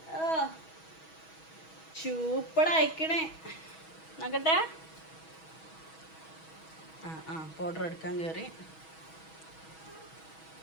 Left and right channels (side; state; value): right; late; 6.2 ms